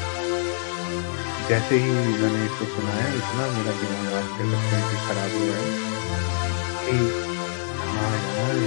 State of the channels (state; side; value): silent; right; 62 dB below the other